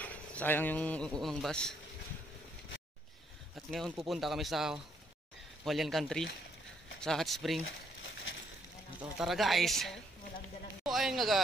sayang yung unang bus. At ngayon pupunta kami sa Hualien Country, sa Hot Spring. Ito, tara guys. So ayun nga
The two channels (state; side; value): normal; both; correlation 0.71